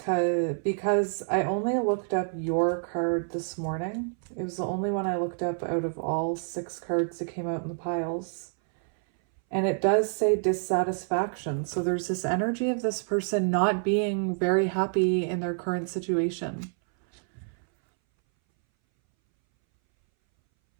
Because I only looked up your card this morning. It was the only one I looked up out of all 6 cards that came out in the piles. And it does say dissatisfaction. So there's this energy of this person not being very happy in their current situation.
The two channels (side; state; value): left; silent; 59 dB below the other